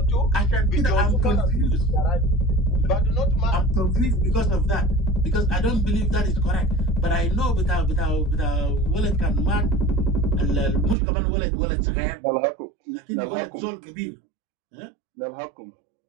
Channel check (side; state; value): left; drops out; at 11.0 s